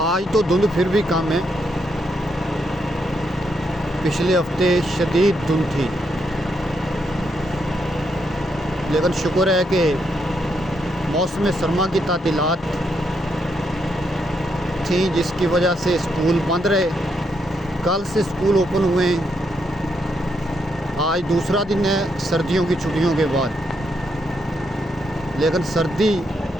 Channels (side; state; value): both; normal; correlation 0.78